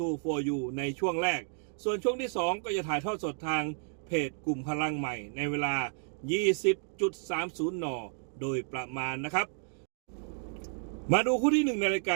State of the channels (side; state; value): left; silent; 57 dB below the other